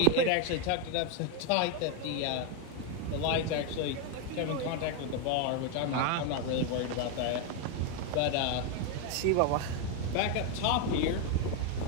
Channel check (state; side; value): different; both; correlation 0.02